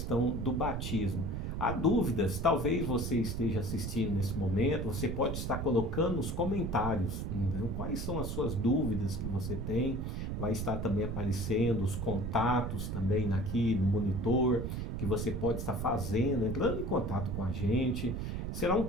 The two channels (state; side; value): noise; right; rumble, 3 dB below the sound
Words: do batismo. Há dúvidas, talvez você esteja assistindo nesse momento, você pode estar colocando nos comentários, né, quais são as suas dúvidas que você tem, vai estar também aparecendo os contatos também aqui no monitor, que você pode estar fazendo, entrando em contato com a gente. Será um